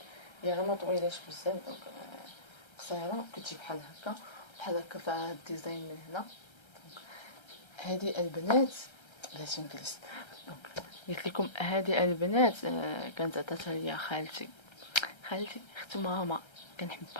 هي راه ما طويلاش بزاف، دونك قصيره كتجي بحال هكا فيها هاد الديزاين من هنا. دونك هذه البنات بلاتي نجلس. دونك قلت لكم هذه البنات كانت عطاتها ليا خالتي اخت ماما،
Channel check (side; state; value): right; late; 1.3 ms